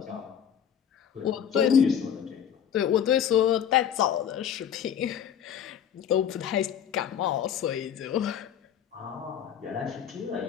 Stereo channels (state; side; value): quieter; right; 8.9 dB